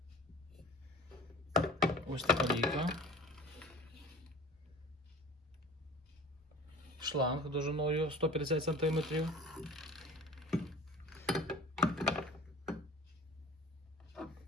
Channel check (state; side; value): normal; both; correlation 0.41